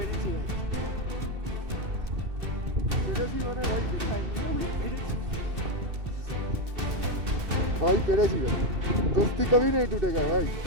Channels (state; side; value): late; left; 2.7 ms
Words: পেরেছি মানে ভাই দেখাইনি পেরেছি भाई पेरेसी भाई दोस्ती कभी नहीं टूटेगा भाई